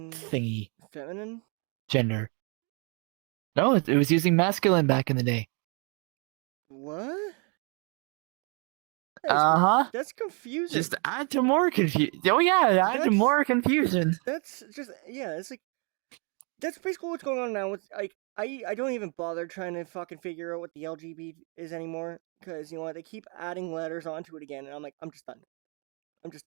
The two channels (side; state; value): left; quieter; 35.4 dB